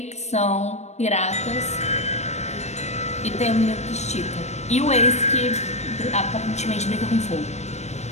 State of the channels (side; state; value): right; late; 0.32 ms